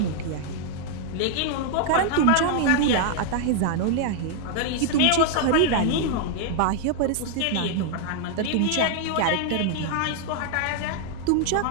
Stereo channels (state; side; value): different; both; correlation 0.00